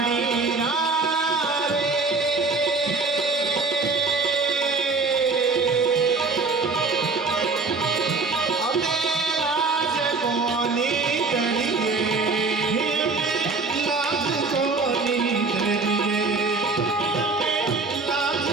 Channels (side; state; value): left; quieter; 4.0 dB